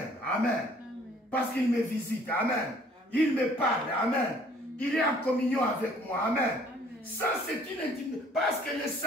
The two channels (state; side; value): normal; both; correlation 0.58